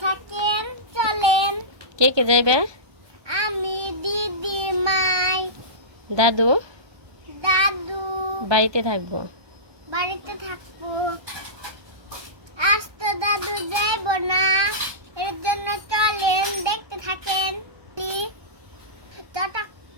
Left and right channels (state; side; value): late; left; 1.2 ms